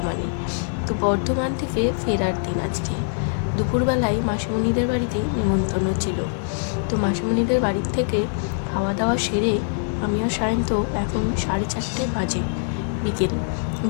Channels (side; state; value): right; silent; digital silence